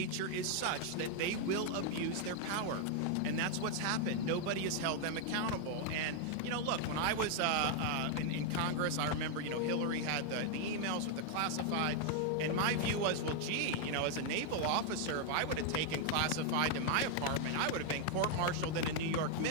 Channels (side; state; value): both; different; correlation 0.00